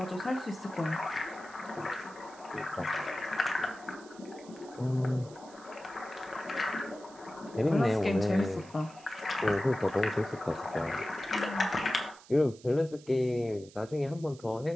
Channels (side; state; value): right; noise; hiss, 23 dB below the sound